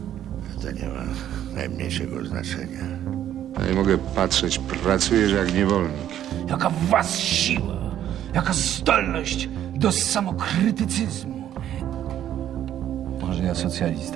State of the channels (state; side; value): quieter; left; 11.1 dB